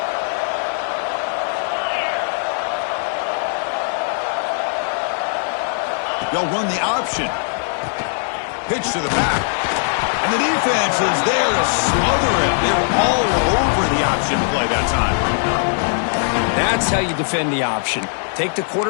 They'll run the option. Pitch to the back. And the defense is there to smother it. They were all over the option play that time. That's how you defend the option. Take the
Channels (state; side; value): silent; right; digital silence